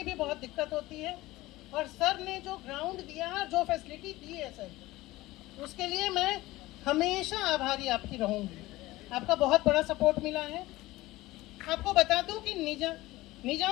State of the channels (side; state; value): right; quieter; 18.4 dB